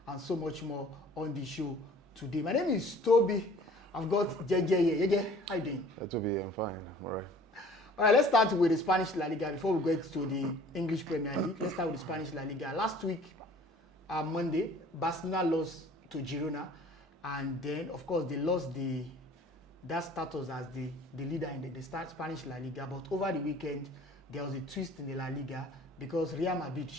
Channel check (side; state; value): both; normal; correlation 0.50